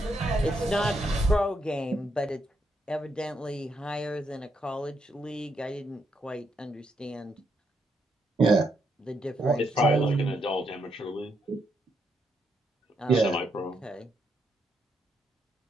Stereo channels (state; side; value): normal; both; correlation 0.78